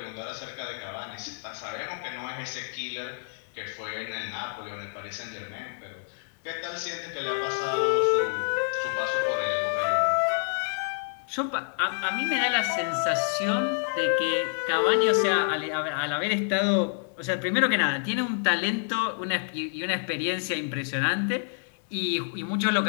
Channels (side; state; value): right; silent; digital silence